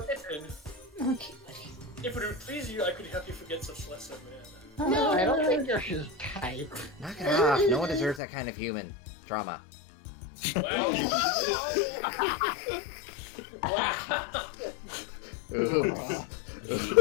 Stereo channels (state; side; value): drops out; right; at 8.2 s